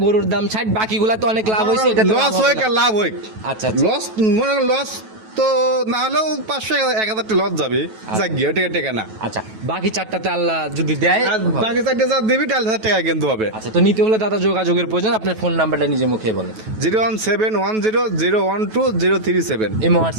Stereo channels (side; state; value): left; late; 9.2 ms